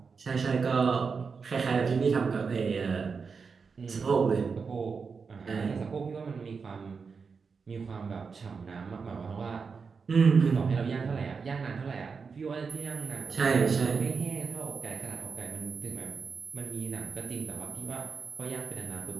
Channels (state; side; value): quieter; left; 5.3 dB